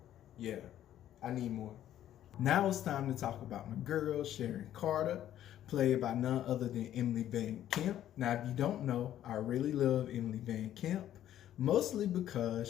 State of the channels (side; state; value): right; quieter; 11.8 dB